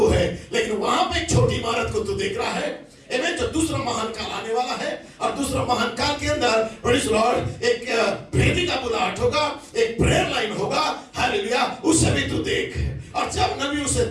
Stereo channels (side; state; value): both; identical; correlation 1.00